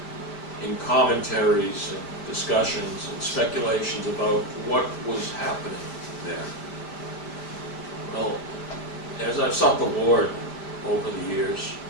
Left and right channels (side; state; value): right; late; 5.1 ms